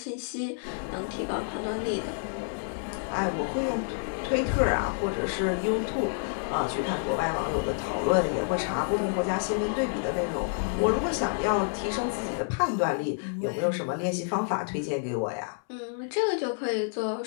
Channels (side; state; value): right; silent; 59 dB below the other